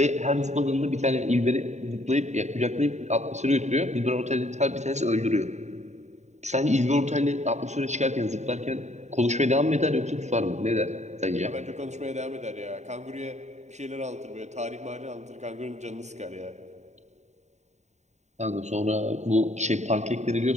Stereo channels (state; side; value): late; left; 0.34 ms